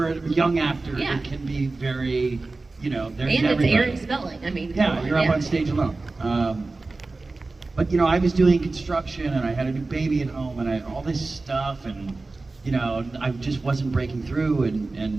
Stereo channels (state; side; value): quieter; left; 3.5 dB